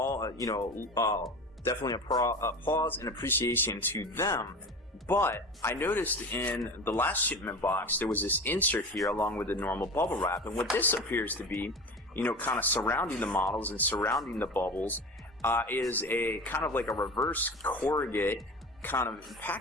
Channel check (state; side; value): normal; both; correlation 0.31